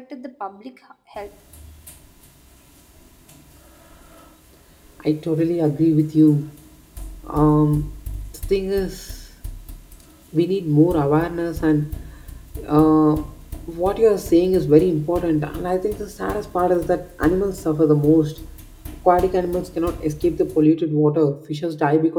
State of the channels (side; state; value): both; identical; correlation 1.00